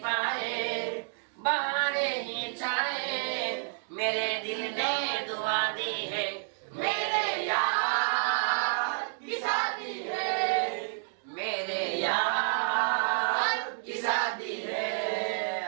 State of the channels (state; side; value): silent; left; digital silence